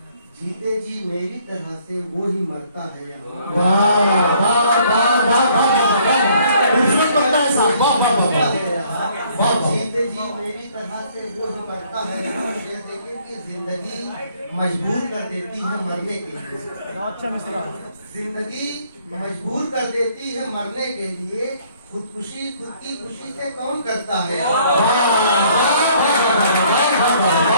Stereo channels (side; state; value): both; inverted; correlation -0.62